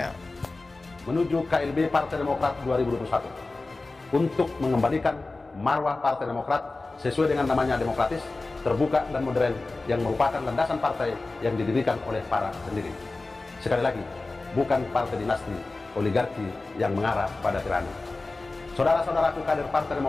Menuju KLB Partai Demokrat 2021 untuk mengembalikan marwah Partai Demokrat sesuai dengan namanya demokratis, terbuka dan modern yang merupakan landasan partai yang didirikan oleh para pendiri. Sekali lagi, bukan partai dinasti oligarki yang mengarah pada tirani. Saudara-saudaraku kader Partai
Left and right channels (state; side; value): quieter; right; 3.4 dB